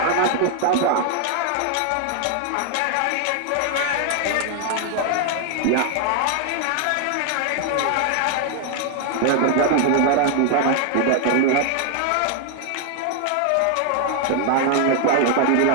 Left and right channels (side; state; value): both; different; correlation 0.00